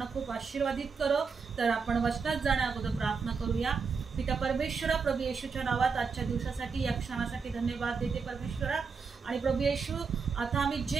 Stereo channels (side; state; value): left; quieter; 5.2 dB